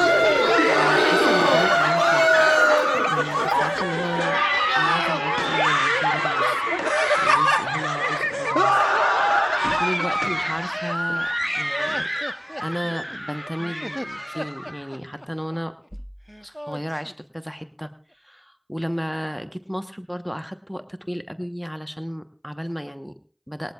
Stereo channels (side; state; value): both; identical; correlation 1.00